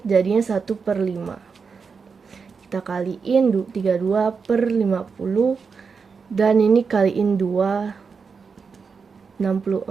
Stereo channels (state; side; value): quieter; left; 5.4 dB